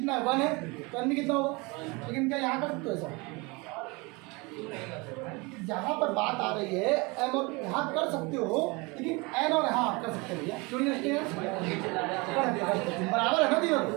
है, 1 है, तो n भी कितना होगा, लेकिन क्या यहाँ कर सकते हो ऐसा, यहाँ पर बात आ रही है m और यहाँ कर सकते हो, लेकिन n और यहाँ कर सकते हो भैया, क्यों नहीं रखते हैं, बराबर है ना, दिया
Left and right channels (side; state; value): left; quieter; 26.8 dB